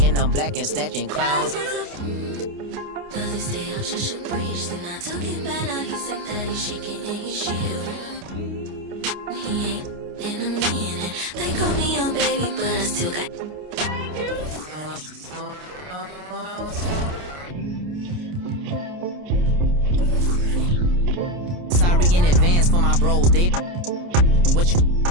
and I'm black and snatching clowns. Does he stay out just a breeze? Then I took it back, now he's sick that he's shaking and he's shivering. He ain't in a minute. They call me young baby, but I still got. Sorry in advance for my bros. They what you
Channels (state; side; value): late; left; 29 ms